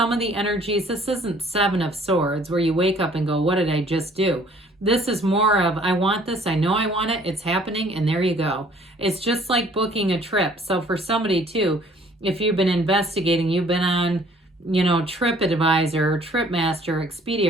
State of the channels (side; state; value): both; normal; correlation 0.57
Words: of the energies. This isn't Seven of Swords where you wake up and go, what did I just do? This is more of, I want this, I know I want it, it's happening, and there you go. It's just like booking a trip. So for somebody too, if you've been investigating, you've been on, TripAdvisor, or TripMaster, Expedia,